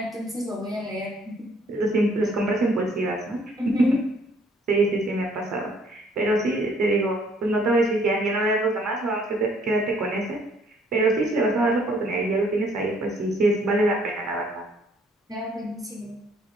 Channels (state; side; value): normal; both; correlation 0.62